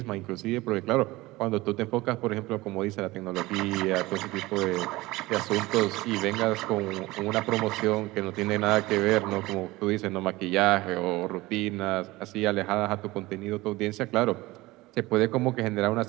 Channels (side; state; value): left; quieter; 19.9 dB